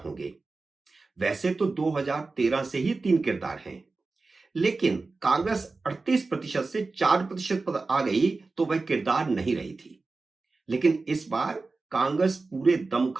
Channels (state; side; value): quieter; left; 3.7 dB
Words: वैसे तो 2013 से ही 3 किरदार हैं, लेकिन कांग्रेस 38% से 4% पर आ गई तो वह किरदार नहीं रही थी। लेकिन इस बार कांग्रेस पूरे